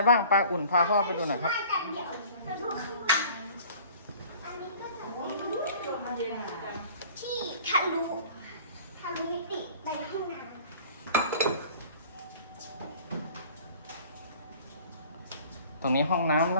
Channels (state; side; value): inverted; both; correlation -0.48